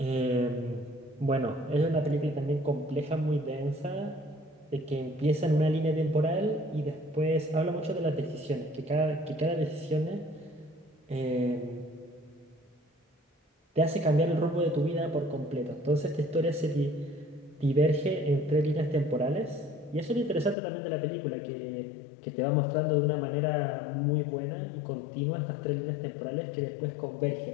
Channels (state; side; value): drops out; right; at 20.6 s